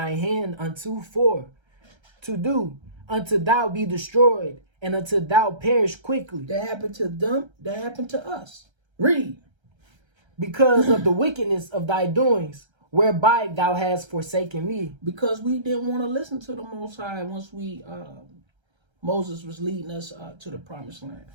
hand unto for to do, until thou be destroyed, and until thou perish quickly. That happened to them. That happened to us. Read. Because of the wickedness of thy doings, whereby thou hast forsaken me. Because we didn't want to listen to the Most High once Moses was leading us to the promised land.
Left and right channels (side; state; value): left; late; 1.3 ms